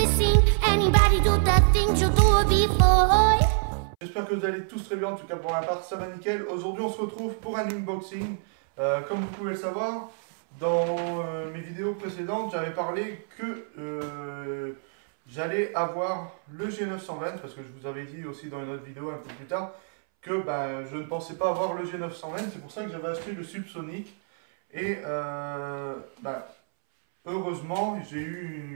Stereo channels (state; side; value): silent; left; 60 dB below the other